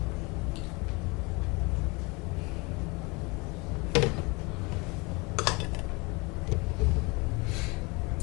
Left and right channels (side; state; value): right; quieter; 26.9 dB